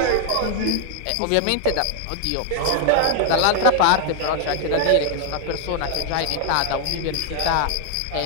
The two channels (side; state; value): both; different; correlation 0.00